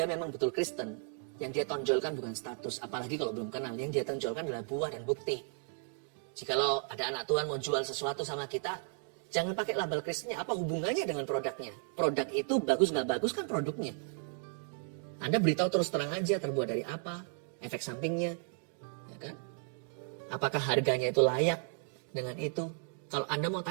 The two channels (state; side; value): silent; left; 55 dB below the other